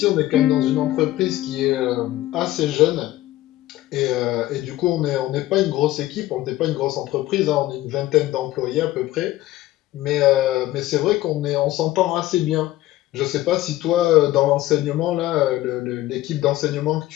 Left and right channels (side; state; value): right; quieter; 15.8 dB